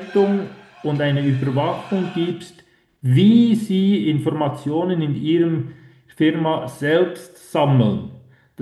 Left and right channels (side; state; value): both; identical; correlation 1.00